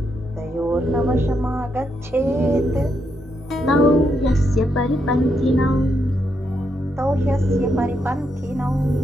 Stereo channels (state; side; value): normal; both; correlation 0.80